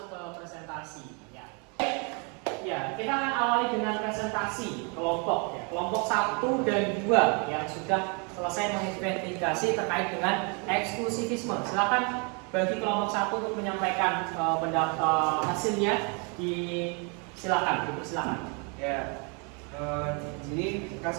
ke presentasi. Ya, kita akan awali dengan presentasi kelompok ya. Kelompok 1 dan 2 yang sudah selesai menginvestigasi terkait dengan eksklusivisme. Silakan bagi kelompok 1 untuk menyampaikan pendapat hasilnya. Silakan. Ya, ini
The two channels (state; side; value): quieter; left; 34.5 dB